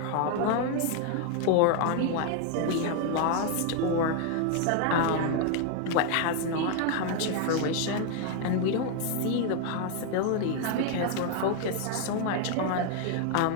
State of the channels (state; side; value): different; both; correlation 0.01